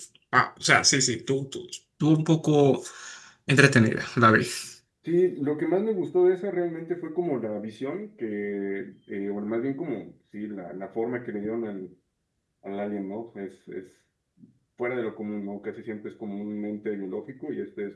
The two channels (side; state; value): both; identical; correlation 1.00